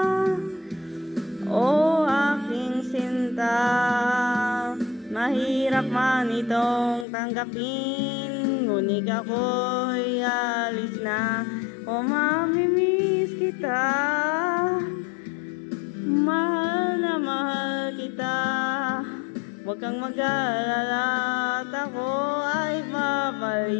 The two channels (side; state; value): right; drops out; at 7.1 s